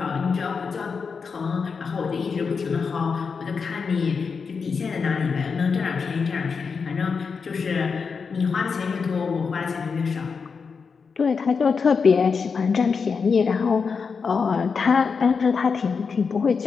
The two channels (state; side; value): quieter; right; 5.4 dB